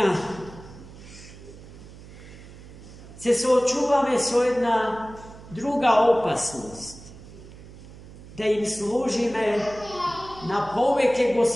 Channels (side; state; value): right; noise; hum, 17 dB below the sound